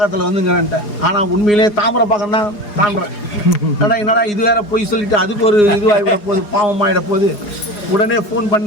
வந்துங்கிறேன்ட்டேன். ஆனால் உண்மையிலே தாமிரப்பாக்கம் தான் தாண்டுறேன். என்னடா இது வேற போய் சொல்லிட்டு அதுக்கு ஒரு இதுவாகிட போகுது, பாவமாகிட போகுது. உடனே ஃபோன்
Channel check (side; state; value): right; late; 4.8 ms